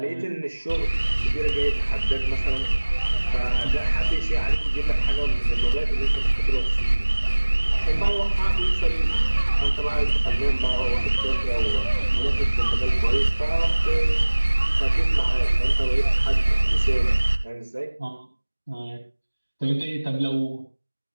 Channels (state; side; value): inverted; both; correlation -1.00